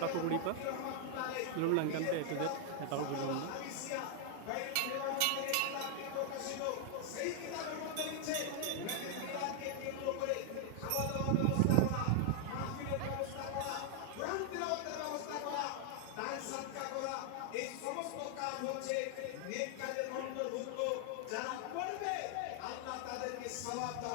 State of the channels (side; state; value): both; different; correlation 0.00